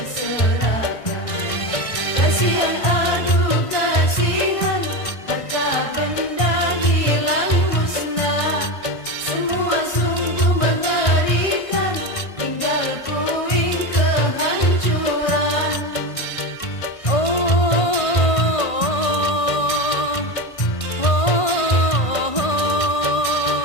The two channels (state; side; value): late; right; 1.6 ms